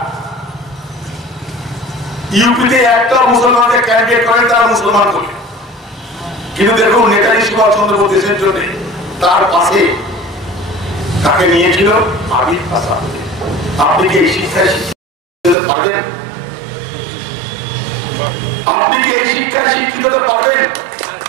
ইউপিতে একটা মুসলমানকে ক্যান্ডিডেট করেন, তারা মুসলমান করে। কিন্তু দেখুন নেতাজি সুভাষচন্দ্র বোস দেশের জন্য তার পাশে তাকে নিয়েছিল আবির আসাদ। আপনি কি এই শিক্ষায় শিক্ষিত পারেন? আপনি কি এই শিক্ষায় শিক্ষিত পারেন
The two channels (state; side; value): drops out; left; at 15.6 s